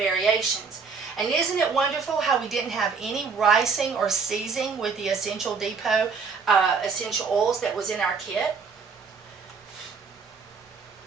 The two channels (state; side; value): quieter; left; 5.3 dB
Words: And isn't it wonderful how we didn't have any ricing or seizing with the Essential Depot essential oils that was in our kit?